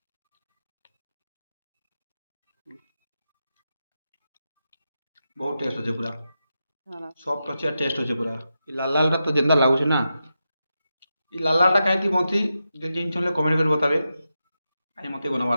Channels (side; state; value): both; inverted; correlation -0.89